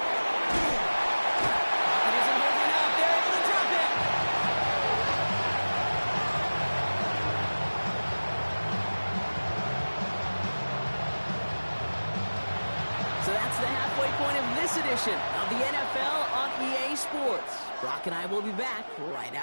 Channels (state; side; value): inverted; both; correlation -1.00